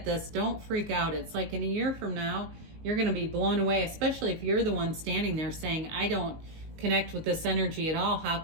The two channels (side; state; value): left; late; 19 ms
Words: this, don't freak out. It's like in a year from now, you're going to be blown away, especially if you're the one standing there saying, I don't connect with this energy at all. How